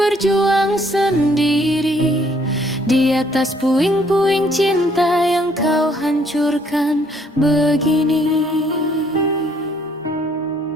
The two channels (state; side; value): normal; both; correlation 0.65